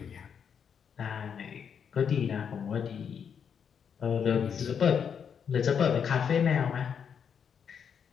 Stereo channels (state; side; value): quieter; right; 7.3 dB